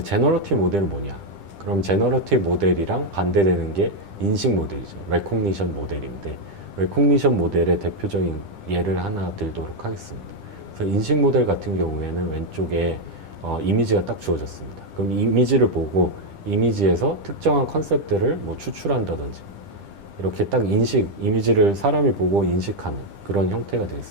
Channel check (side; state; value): left; late; 10 ms